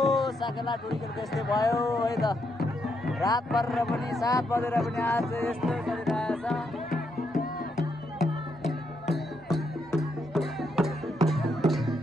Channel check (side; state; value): both; normal; correlation 0.78